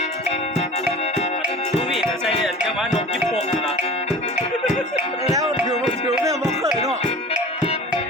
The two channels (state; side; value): normal; both; correlation 0.39